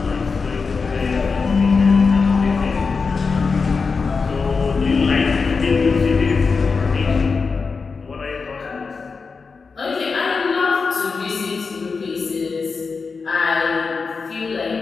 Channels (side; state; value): right; quieter; 4.8 dB